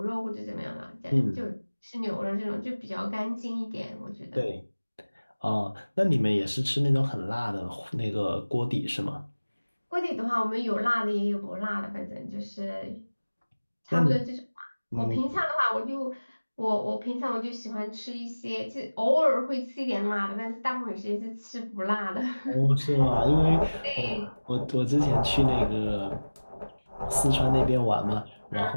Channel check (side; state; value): both; inverted; correlation -1.00